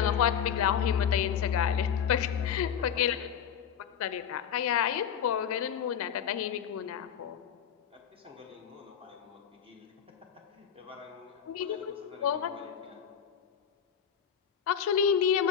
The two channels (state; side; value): quieter; right; 8.3 dB